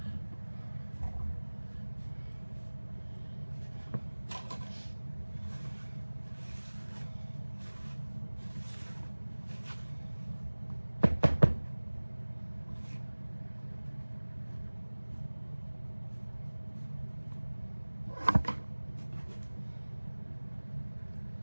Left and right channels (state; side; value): inverted; both; correlation -1.00